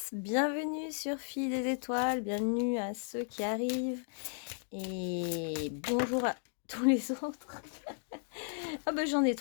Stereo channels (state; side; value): silent; right; 55 dB below the other